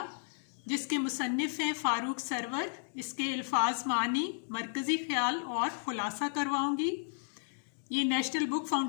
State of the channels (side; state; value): right; silent; digital silence